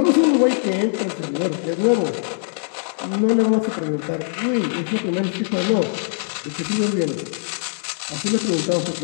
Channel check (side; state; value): right; silent; 63 dB below the other